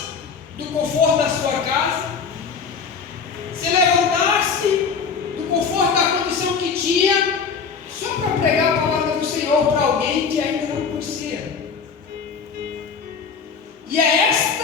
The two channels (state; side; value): quieter; right; 5.8 dB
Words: do conforto da sua casa, se levantasse do conforto da condição que tinha, só para pregar a palavra do Senhor para alguém que ainda não conhecia. E é